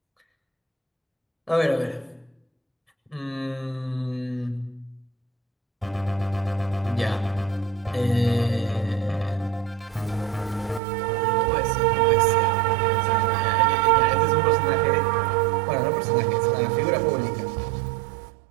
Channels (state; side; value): drops out; left; at 10.8 s